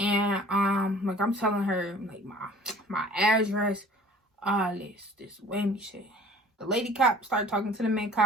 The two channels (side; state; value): both; normal; correlation 0.49